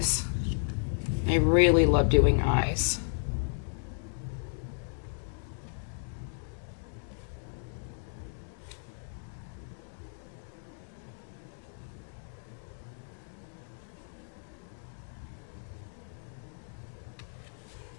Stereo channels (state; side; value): silent; right; digital silence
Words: I really love doing eyes.